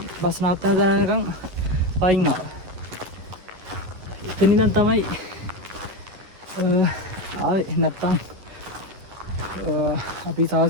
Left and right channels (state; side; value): late; left; 11 ms